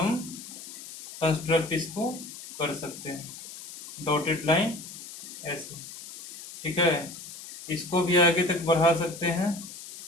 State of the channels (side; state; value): left; noise; hiss, 13 dB below the sound